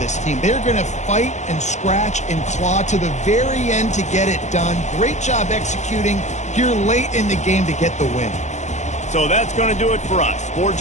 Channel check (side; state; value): right; late; 0.34 ms